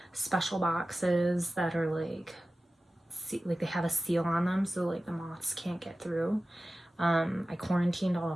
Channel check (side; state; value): both; normal; correlation 0.95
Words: special boxes that are like they have a seal on them, so like the moths can't get through. I quarantined all